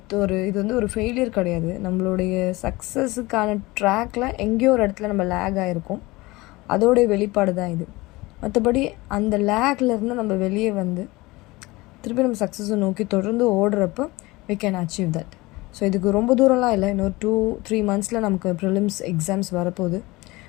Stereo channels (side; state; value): right; quieter; 21.6 dB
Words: இது ஒரு ஃபெயிலியர் கிடையாது. நம்மளுடைய சக்ஸஸுக்கான ட்ராக்கில் எங்கேயோ ஒரு இடத்துல நம்ம லேக் ஆகிருக்கோம். அதோடைய வெளிப்பாடு தான் இது. மற்றபடி அந்த லேக்லேருந்து நம்ம வெளியே வந்து திருப்பி நம்ம சக்ஸஸை நோக்கி தொடர்ந்து ஓடுறப்போ we can achieve that. So இதுக்கு ரொம்ப தூரம்லாம் இல்லை. இன்னொரு 2-3 மந்த்ஸில் நமக்கு ப்ரிலிம்ஸ் எக்ஸாம்ஸ் வரப்போகுது.